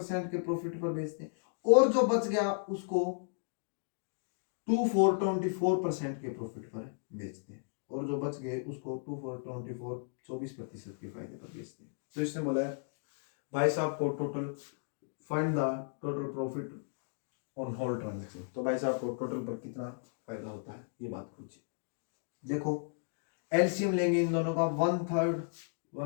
के प्रॉफिट पर बेचते हैं, और जो बच गया उसको 24% के प्रॉफिट पर बेचते हैं, और जो बच गए उसको 24% के फायदे पर बेचते हैं। तो इसने बोला है भाई साहब को total find the total profit on whole transaction. तो भाई साहब को टोटल पर कितना फायदा होता है ये बात पूछिए। देखो एलसीएम लेंगे इन दोनों का, 1/3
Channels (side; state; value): right; silent; digital silence